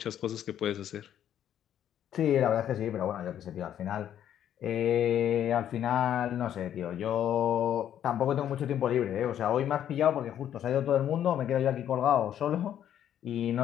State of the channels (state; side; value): quieter; right; 10.4 dB